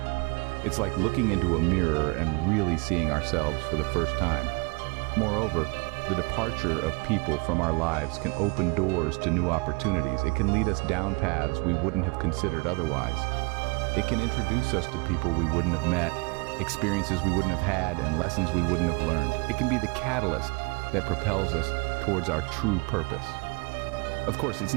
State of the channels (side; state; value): left; quieter; 28.8 dB